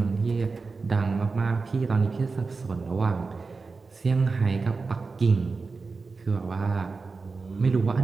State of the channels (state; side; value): quieter; left; 4.3 dB